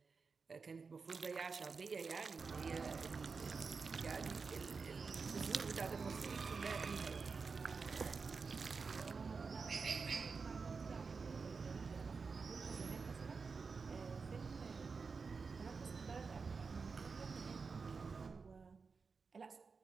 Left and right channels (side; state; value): left; quieter; 4.9 dB